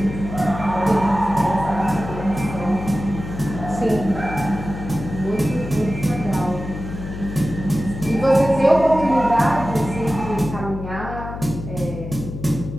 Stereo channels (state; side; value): noise; left; hum, 9 dB below the sound